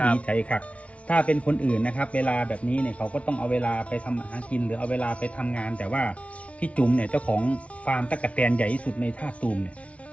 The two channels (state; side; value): late; right; 0.064 ms